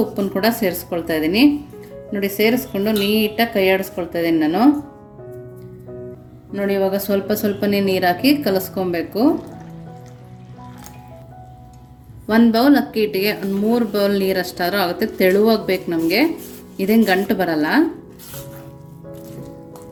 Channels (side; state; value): both; identical; correlation 1.00